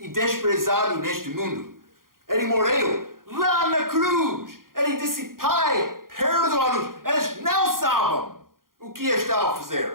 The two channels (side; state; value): left; late; 0.91 ms